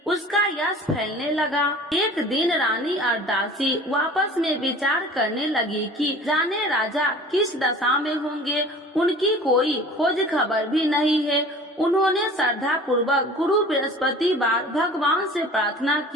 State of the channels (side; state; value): both; normal; correlation 0.43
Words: उसका यश फैलने लगा। एक दिन रानी और दासी आपस में विचार करने लगी कि जाने राजा किस दशा में होंगे, उनकी कोई खोज खबर भी नहीं है। उन्होंने श्रद्धा पूर्वक गुरु बृहस्पतिवार भगवान से प्रार्थना